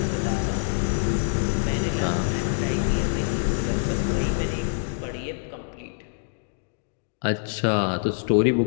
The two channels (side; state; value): right; silent; digital silence